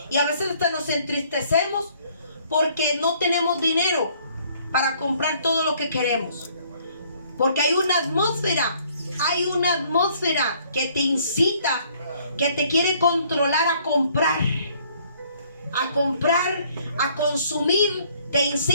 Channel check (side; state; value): both; inverted; correlation -0.62